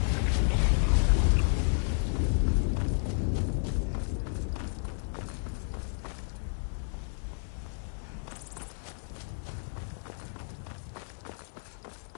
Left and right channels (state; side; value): silent; right; 57 dB below the other